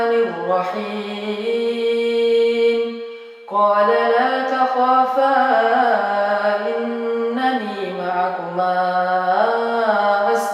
Qala la takhafa innani ma'akuma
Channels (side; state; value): both; identical; correlation 1.00